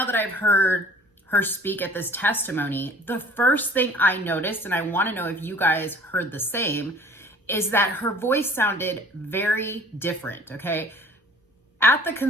that I've heard her speak at this testimony, the first thing I noticed, and I want to know if you guys heard the same, is that her voice sounded very different, okay? At the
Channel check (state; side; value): normal; both; correlation 0.50